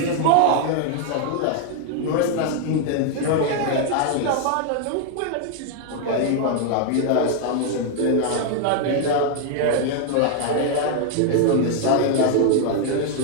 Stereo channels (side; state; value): both; different; correlation 0.00